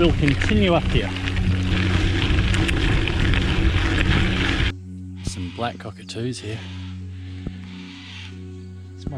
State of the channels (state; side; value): identical; both; correlation 1.00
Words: continue up here. Some black cockatoos here. There's